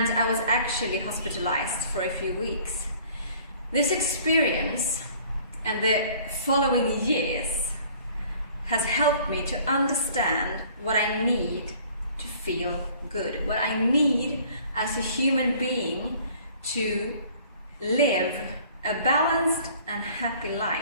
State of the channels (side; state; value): both; inverted; correlation -0.53